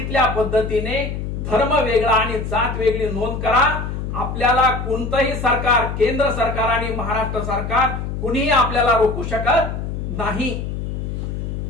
पद्धतीने धर्म वेगळा आणि जात वेगळी नोंद करा. आपल्याला कोणतंही सरकार, केंद्र सरकार आणि महाराष्ट्र सरकार कुणीही आपल्याला रोखू शकत नाही.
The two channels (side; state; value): left; noise; hum, 5 dB below the sound